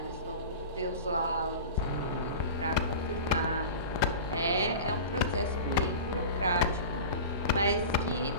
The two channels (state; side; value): inverted; both; correlation -0.33